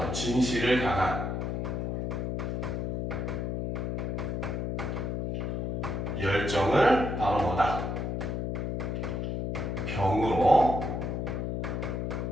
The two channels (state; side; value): noise; left; hum, 2 dB below the sound